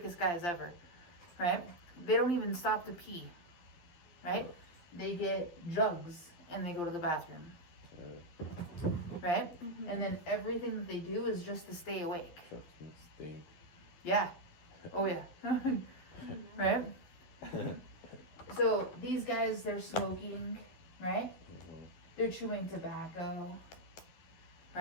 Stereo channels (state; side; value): late; right; 12 ms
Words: guys ever. Right? They don't even stop to pee. Right? They get jugs and they go to the bathroom. Right? And then everything that they do is just to stay awake. Trucks must stink. Yeah. Oh yeah. Right? So these guys, they're smoking, right? They're chewing tobacco,